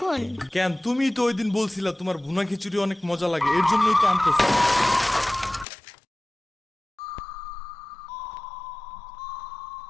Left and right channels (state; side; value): drops out; right; at 5.7 s